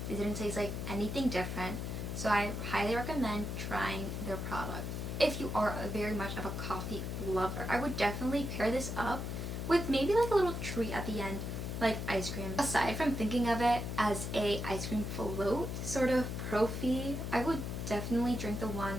It didn't taste like anything different. So I highly recommend trying their product. If you are very much of a coffee lover, I would definitely pair this up with maybe like a little treat at the end, like ice cream. Aside from thinking of it as a ice cream float sort of proffee, I would definitely drink the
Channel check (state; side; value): noise; left; hum, 4 dB below the sound